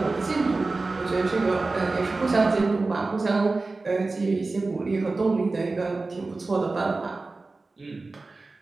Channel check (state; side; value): quieter; left; 3.5 dB